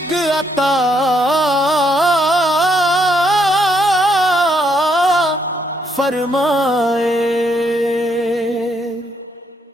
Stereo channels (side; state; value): both; normal; correlation 0.74